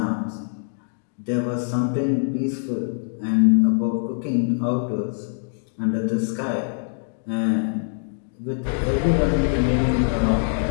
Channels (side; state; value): right; silent; digital silence